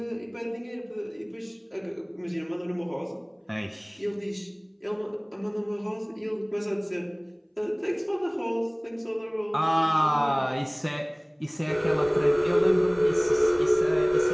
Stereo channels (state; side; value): identical; both; correlation 1.00